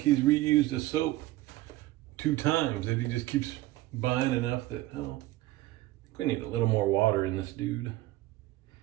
he's reused the soap 2 times, that he just keeps buying enough that, I think we need a little more water in this dude.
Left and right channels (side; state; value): left; quieter; 17.3 dB